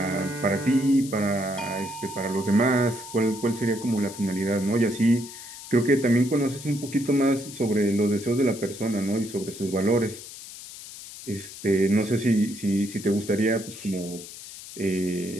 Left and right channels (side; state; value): left; noise; hiss, 14 dB below the sound